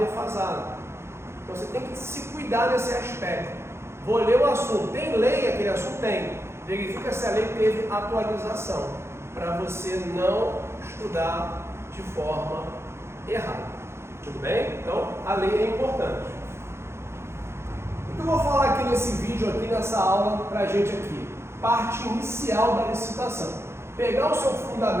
Então você tem que se cuidar nesse aspecto. Vou ler o assunto. Tem lei? Aquele assunto tem. Verifica se a lei teve atualização, para você não estudar de forma errada. Tudo bem? Então, a lei é importante. O que eu vou falar aqui nesse vídeo, aqui nessa aula, para a gente aqui? Parte inicial da licitação. Pegar o seu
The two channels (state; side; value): late; left; 0.13 ms